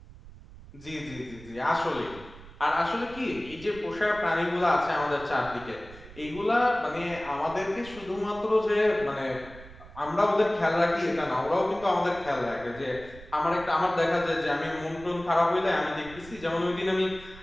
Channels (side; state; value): right; noise; rumble, 18 dB below the sound